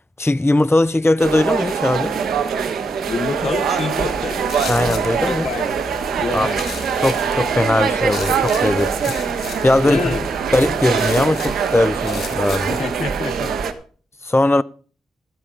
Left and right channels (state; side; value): normal; both; correlation 0.81